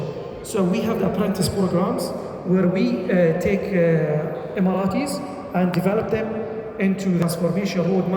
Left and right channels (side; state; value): both; identical; correlation 1.00